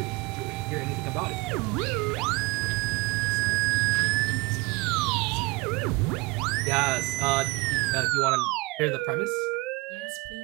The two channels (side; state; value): left; quieter; 23.6 dB